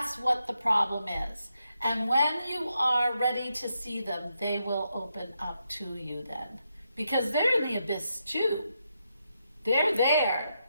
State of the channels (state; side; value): inverted; both; correlation -0.82